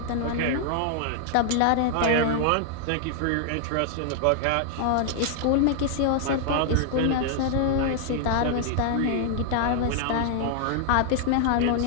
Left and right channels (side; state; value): both; different; correlation 0.00